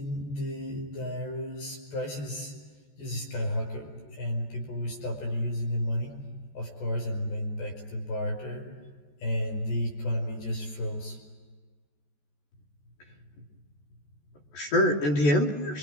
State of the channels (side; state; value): right; late; 14 ms